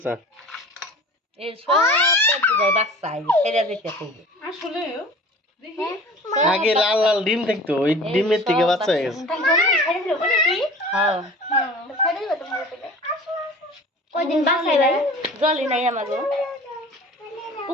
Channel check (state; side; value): normal; both; correlation 0.41